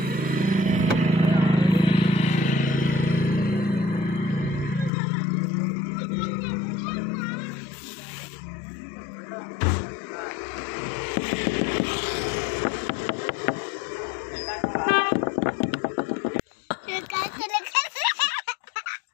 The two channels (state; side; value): drops out; right; at 4.9 s